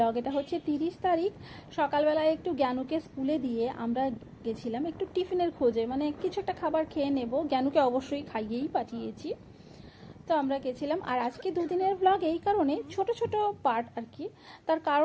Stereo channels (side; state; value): both; identical; correlation 1.00